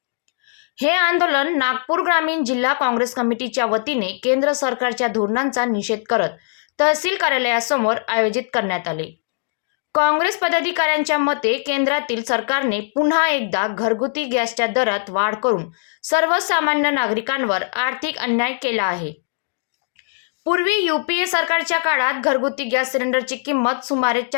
हे आंदोलन नागपूर ग्रामीण जिल्हा काँग्रेस कमिटीच्या वतीने केंद्र सरकारच्या धोरणांचा निषेध करत तहसील कार्यालयासमोर आयोजित करण्यात आले। काँग्रेस पदाधिकाऱ्यांच्या मते केंद्रातील सरकारने पुन्हा एकदा घरगुती गॅसच्या दरात वाढ करून सर्वसामान्य नागरिकांवर आर्थिक अन्याय केला आहे। पूर्वी यूपीए सरकारच्या काळात घरगुती गॅस सिलेंडरची किंमत सुमारे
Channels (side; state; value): right; silent; digital silence